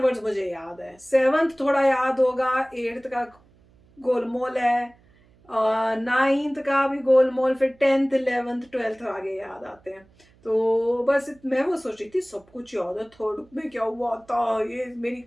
मुझे याद है। 7th थोड़ा याद होगा, 8th का गोलमोल है, 9th का भी गोलमोल, फिर 10th, 11th, 12th आगे याद आते हैं। तो बस मैं वो सोच रही थी सब कुछ याद है। 3rd में क्या हुआ था, ये मेरी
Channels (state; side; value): noise; right; hum, 30 dB below the sound